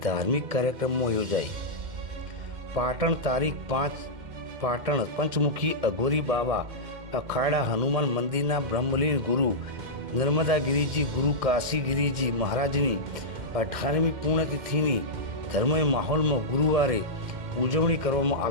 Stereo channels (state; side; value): late; left; 2.1 ms